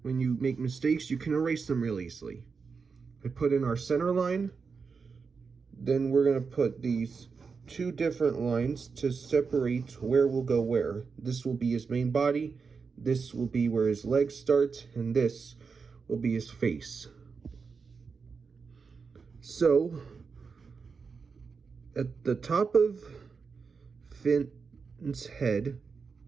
when you make mistakes you can erase them real easily. I put in our center line, then we're going to put these two different lines to separate where we'll go where. This will be his main body, this will be where his legs start, and this will be his face. So at the top of Finn's head,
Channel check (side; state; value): left; quieter; 5.2 dB